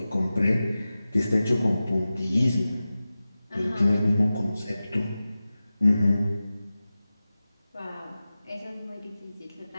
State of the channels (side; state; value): both; inverted; correlation -0.95